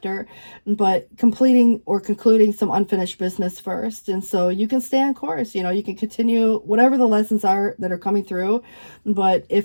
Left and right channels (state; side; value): inverted; both; correlation -1.00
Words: but completing or concluding some unfinished business first. And so you can stay on course, you can continue whatever the lessons are that are coming through. But